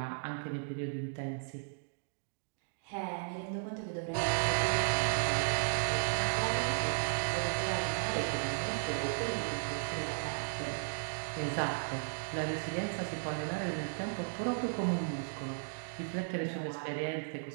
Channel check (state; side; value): silent; left; digital silence